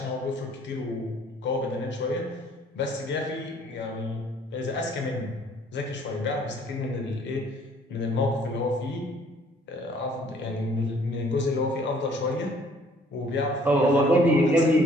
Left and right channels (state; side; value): normal; both; correlation 0.59